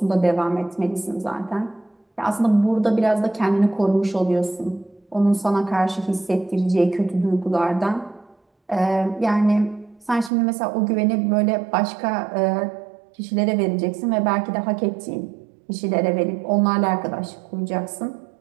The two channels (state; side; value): drops out; left; at 10.3 s